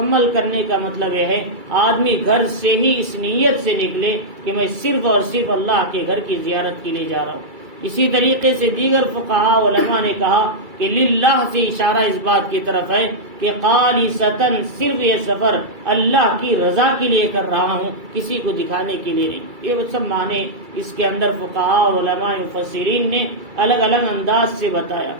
کرنے کا مطلب یہ ہے آدمی گھر سے ہی اس نیت سے نکلے کہ میں صرف اور صرف اللہ کے گھر کی زیارت کے لیے جا رہا ہوں۔ اسی طریقے سے دیگر فقہاء علماء نے کہا کہ للہ سے اشارہ اس بات کی طرف ہے کہ خالصتاً صرف یہ سفر اللہ کی رضا کے لیے کر رہا ہوں، کسی کو دکھانے کے لیے نہیں۔ یہ سب معنی اس کے اندر فقہاء علماء مفسرین نے الگ الگ انداز سے بتایا۔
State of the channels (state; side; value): late; left; 2.3 ms